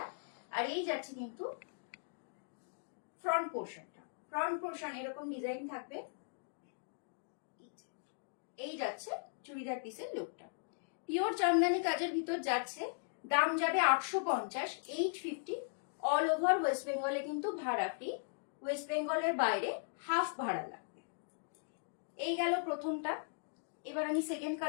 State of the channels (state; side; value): silent; right; digital silence